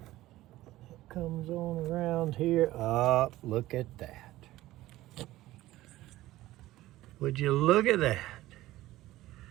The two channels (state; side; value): quieter; left; 16.2 dB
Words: Comes on around here. Oh, look at that. Would you look at that?